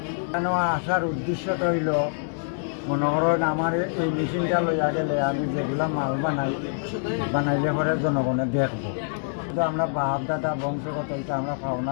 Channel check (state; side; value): silent; right; digital silence